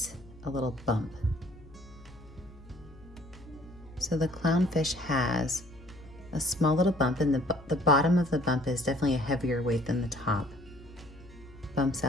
a little bump. So the clownfish has a small little bump, and the bottom of the bump is definitely a heavier weight than the top. Bumps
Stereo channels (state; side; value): noise; left; hum, 21 dB below the sound